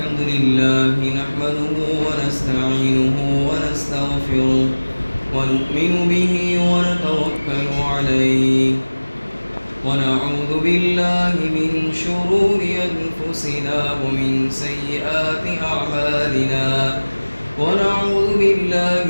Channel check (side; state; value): both; inverted; correlation -1.00